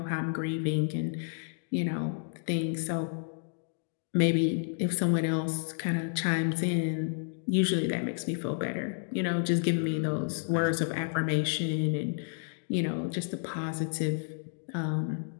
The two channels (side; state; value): right; silent; digital silence